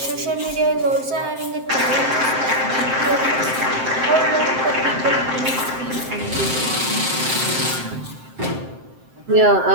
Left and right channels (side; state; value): left; late; 7.7 ms